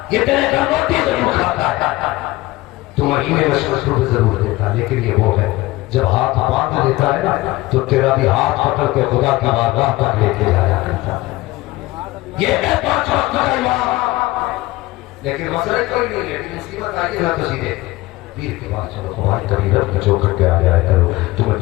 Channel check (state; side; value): quieter; right; 19.1 dB